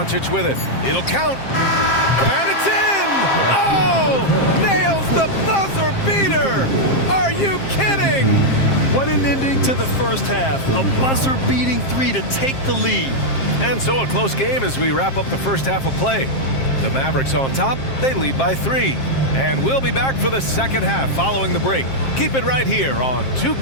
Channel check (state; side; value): late; right; 7.5 ms